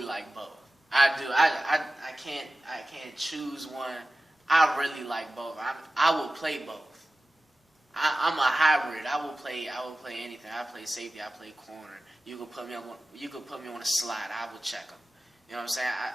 like both. I do. I can't choose one. I really like both. I will play both. I'm a hybrid. I will play anything. I play safety. I play corner. You could put me on a slot. I would check them. You know what I'm saying?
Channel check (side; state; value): both; normal; correlation 0.96